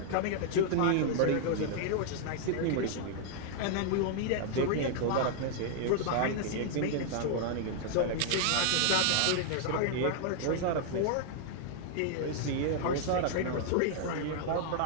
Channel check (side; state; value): both; different; correlation -0.01